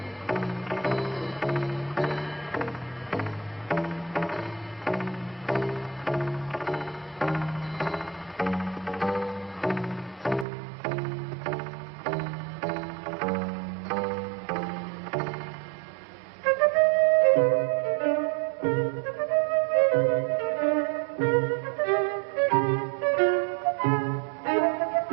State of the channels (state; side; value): drops out; left; at 10.5 s